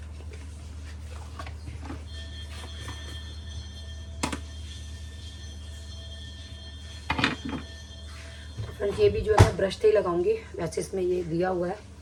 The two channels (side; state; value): both; identical; correlation 1.00